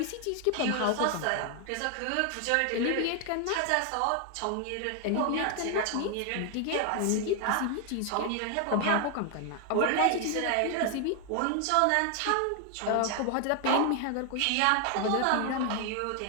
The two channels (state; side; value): different; both; correlation 0.00